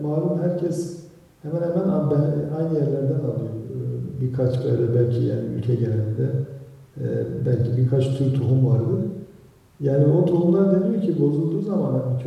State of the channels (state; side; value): identical; both; correlation 1.00